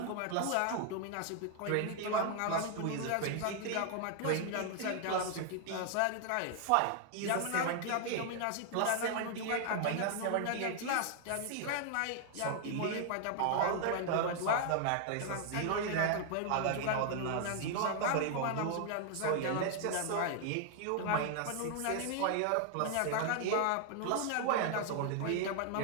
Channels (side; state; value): both; different; correlation 0.00